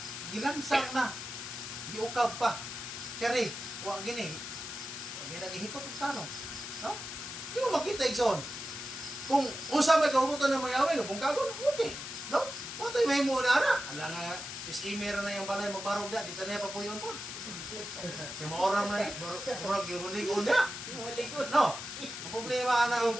Gilansang na, giukab pa. Kari, wa gini. Ginagihikot ang tanong. No? Di mo makita igsoon. Kung usap ay kahubutan ng mayawi, kung kagon, okay. No? Matay may mo na ana. Ala nga, sis Imer na yung balay magbarog na, dito na pa po yun po. Yung maoram na, barog yung ligon na. No? Ang problema na,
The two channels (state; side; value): noise; left; hiss, 8 dB below the sound